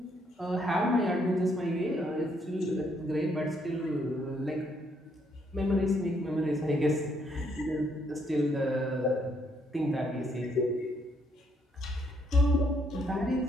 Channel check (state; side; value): normal; both; correlation 0.71